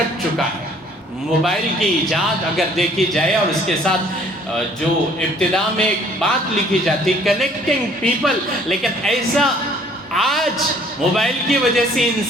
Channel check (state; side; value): normal; both; correlation 0.58